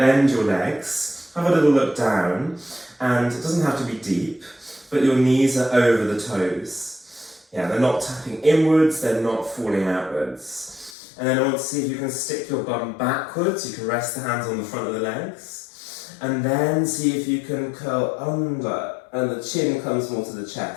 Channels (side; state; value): right; drops out; at 11.0 s